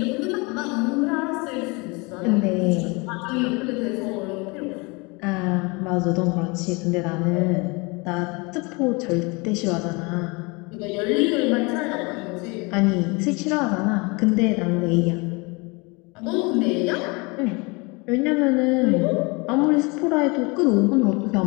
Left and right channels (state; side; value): quieter; right; 27.9 dB